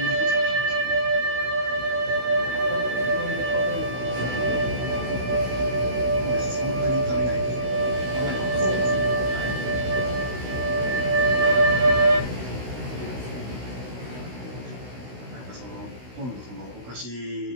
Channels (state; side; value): late; left; 16 ms